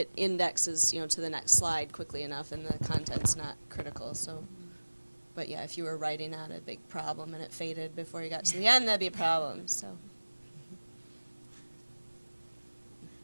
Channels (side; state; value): both; inverted; correlation -1.00